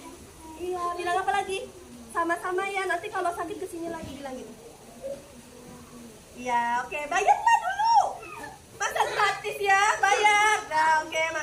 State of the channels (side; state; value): both; identical; correlation 1.00